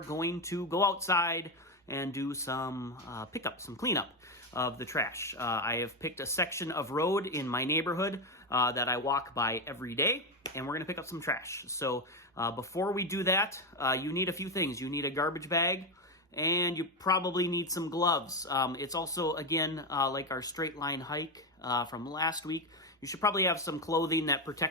going to go outside and do some pickup, some cleanup of the trash. I have picked a section of road in my neighborhood that I walk by every day, and we're gonna pick up some trash. So before we do that, you need a few things. You need a garbage bag, and you probably need some gloves. It's also, again, like our straight line hike from last week. You should probably have some clothing that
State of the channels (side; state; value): both; normal; correlation 0.11